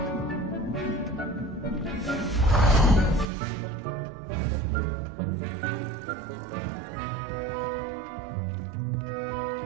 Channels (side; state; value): left; drops out; at 3.2 s